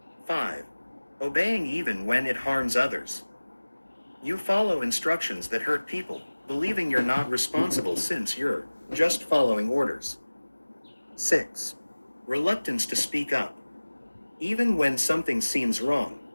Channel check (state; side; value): inverted; both; correlation -1.00